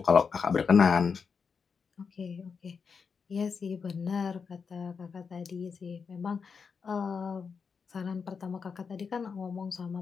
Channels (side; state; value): right; quieter; 5.7 dB